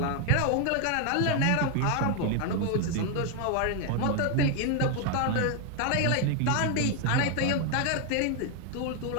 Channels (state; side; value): different; both; correlation 0.01